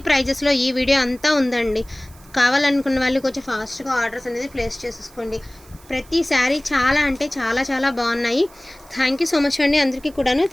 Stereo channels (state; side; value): noise; right; hiss, 25 dB below the sound